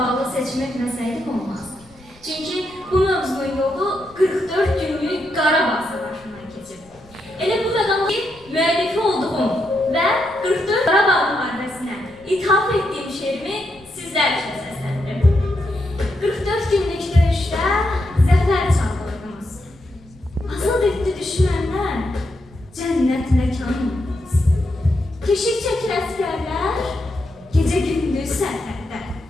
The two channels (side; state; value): left; noise; rumble, 26 dB below the sound